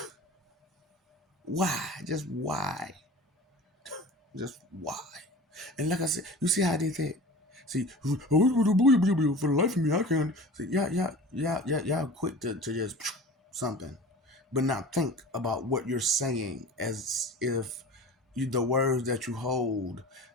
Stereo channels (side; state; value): both; normal; correlation 0.38